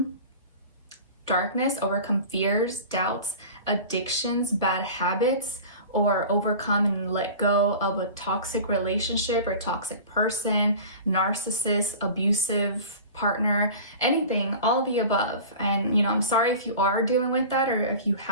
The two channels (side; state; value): both; inverted; correlation -0.37